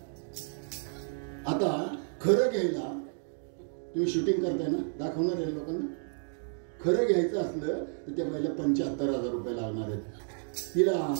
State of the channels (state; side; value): silent; left; 57 dB below the other